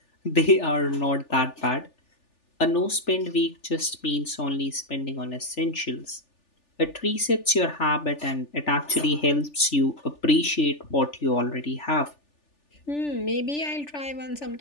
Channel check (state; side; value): late; right; 3.4 ms